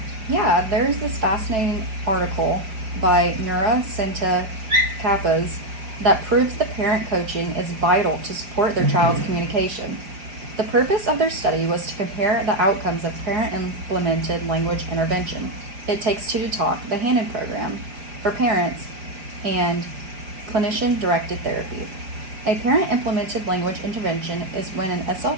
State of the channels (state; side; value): late; left; 5.0 ms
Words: Yeah, there's this fascinating article by Nura Sinta Kappas that proves that parent coaching is vital to support their child's communication. The purpose of their study was to compare the outcomes of parent-implemented language intervention. It Takes Two to Talk, the Hannon program, for parents, and clinician-directed therapy. A parent-implemented language intervention is when an